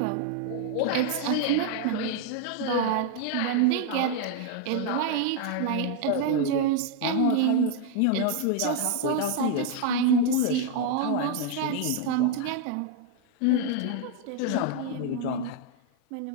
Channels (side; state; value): both; different; correlation 0.00